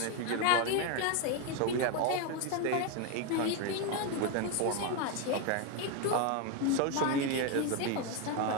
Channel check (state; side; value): different; both; correlation 0.02